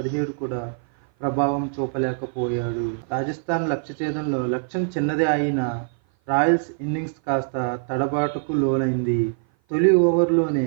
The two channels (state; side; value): silent; left; 56 dB below the other